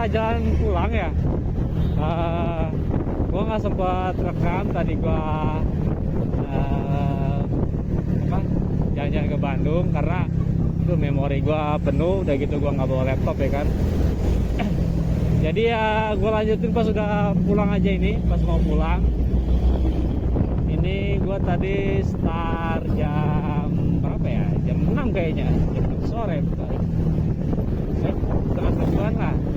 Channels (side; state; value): both; identical; correlation 1.00